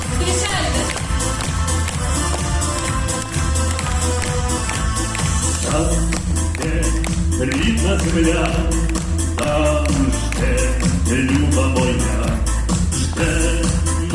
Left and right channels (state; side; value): identical; both; correlation 1.00